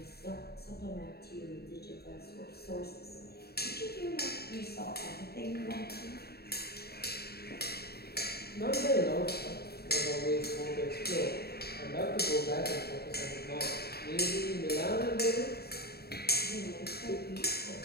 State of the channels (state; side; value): late; right; 0.46 ms